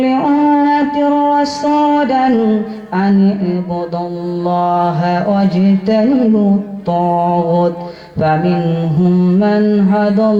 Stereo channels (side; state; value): both; identical; correlation 1.00